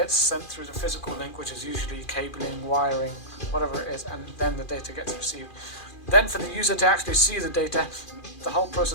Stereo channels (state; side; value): late; right; 2.4 ms